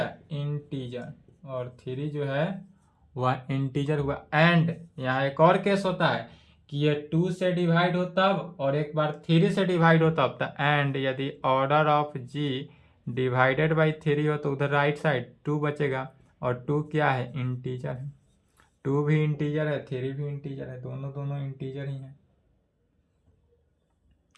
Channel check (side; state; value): both; identical; correlation 1.00